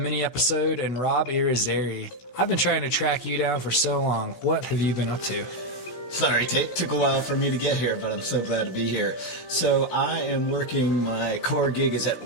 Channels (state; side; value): late; right; 16 ms